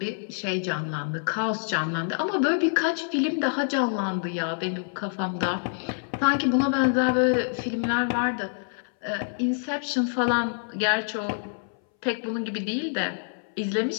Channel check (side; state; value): right; silent; 60 dB below the other